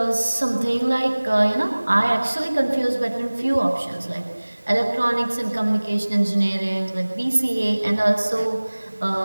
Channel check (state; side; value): inverted; both; correlation -1.00